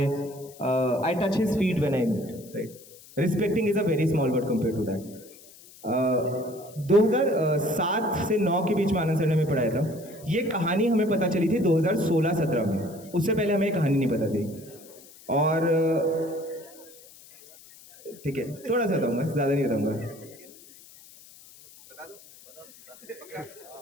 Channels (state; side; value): noise; left; hiss, 22 dB below the sound